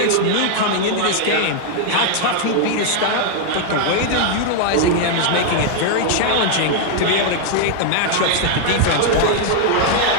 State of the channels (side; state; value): both; different; correlation 0.00